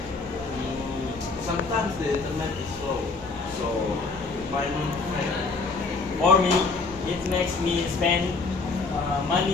Sometimes the internet is slow, so payment fail. For me, it makes me spend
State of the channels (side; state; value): right; quieter; 4.1 dB